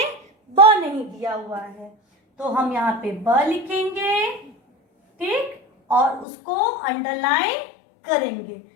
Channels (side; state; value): right; drops out; at 6.2 s